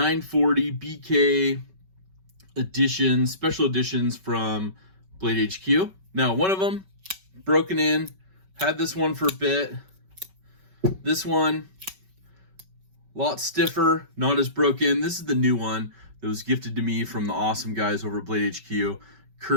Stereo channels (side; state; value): left; late; 5.3 ms